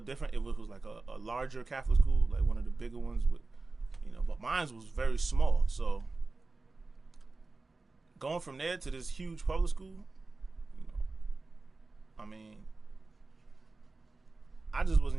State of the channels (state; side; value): quieter; left; 3.5 dB